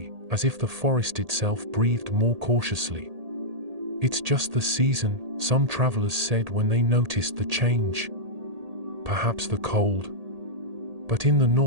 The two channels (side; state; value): left; late; 1.8 ms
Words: as if the forest itself breathed more cautiously. It's just the season, some travelers said when they noticed the change. perhaps the cold. But in the